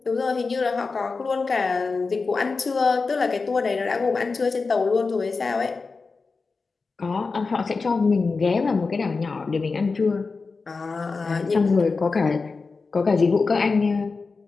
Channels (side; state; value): right; quieter; 4.3 dB